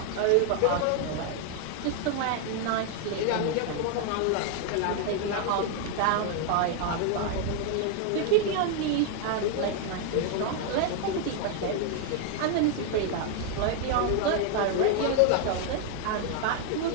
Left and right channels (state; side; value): different; both; correlation 0.00